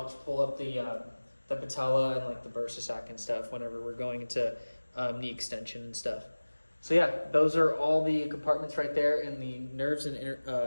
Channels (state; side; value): inverted; both; correlation -1.00